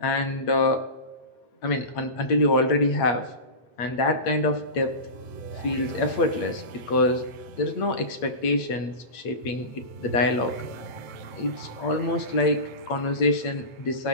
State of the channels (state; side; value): late; right; 8.6 ms